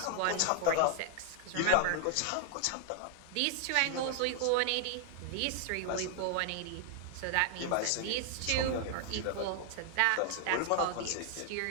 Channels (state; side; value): different; both; correlation 0.00